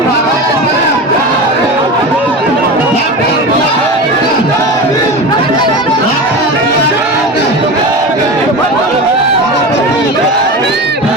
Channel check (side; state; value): both; normal; correlation 0.27